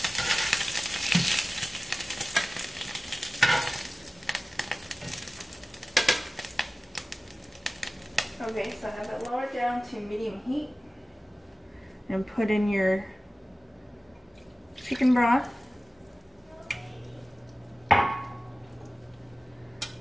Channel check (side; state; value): both; normal; correlation 0.97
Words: Okay, so I have it lowered down to medium heat and put in your chicken broth. And